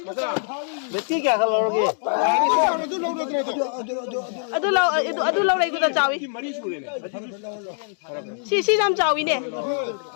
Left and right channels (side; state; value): right; silent; 63 dB below the other